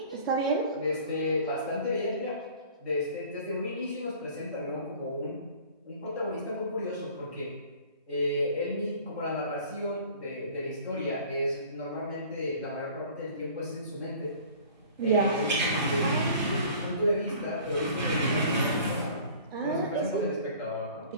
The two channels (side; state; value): both; inverted; correlation -0.48